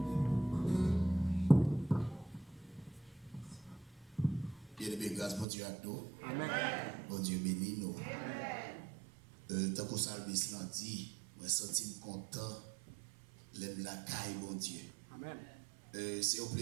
grâce, bon Dieu, à nous. Amen. Bon Dieu, bénis nous. Tant que Salmis l'a dit, je me sens content, l'aime la caille, bon Dieu. Amen. C'est un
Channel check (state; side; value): drops out; left; at 5.5 s